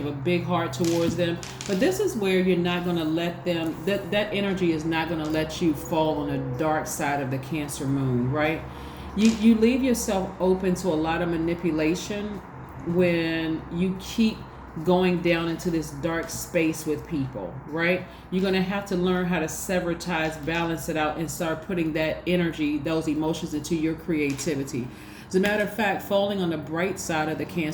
have a big heart towards them. But this is where you're not going to let them, that energy is not going to let you fall on the dark side of the Cancer moon, right? You leave yourself open to a lot of manipulation when you keep going down into this dark space with people, right? You're going to have to learn how to sever ties, balance it out, and start putting that energy, those emotions, into your creativity. As a matter of fact, falling on the bright side of the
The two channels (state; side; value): identical; both; correlation 1.00